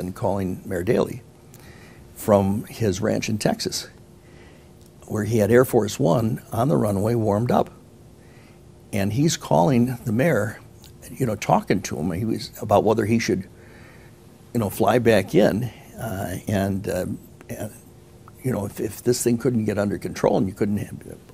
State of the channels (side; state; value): both; identical; correlation 1.00